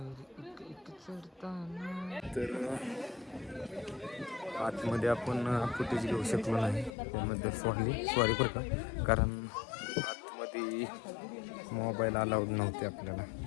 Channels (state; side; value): drops out; right; at 7.0 s